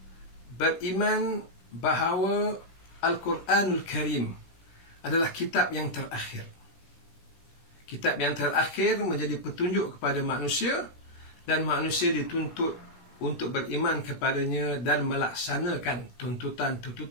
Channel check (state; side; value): late; right; 16 ms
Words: beriman bahawa Al-Quranul Karim adalah kitab yang terakhir. Kitab yang terakhir menjadi petunjuk kepada manusia, dan manusia dituntut untuk beriman kepadanya dan melaksanakan